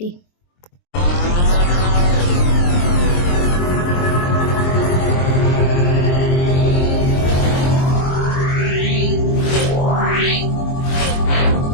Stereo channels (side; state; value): right; late; 23 ms